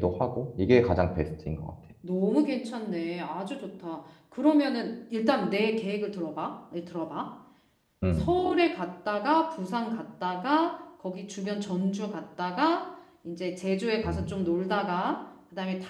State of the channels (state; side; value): identical; both; correlation 1.00